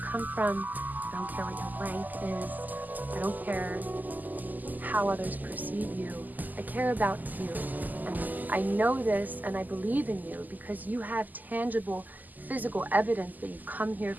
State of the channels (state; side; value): late; left; 0.083 ms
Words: come from, I don't care what your rank is, I don't care how others perceive you. I care about you, and I know this and I believe in you because you have tangible physical evidence that you've come here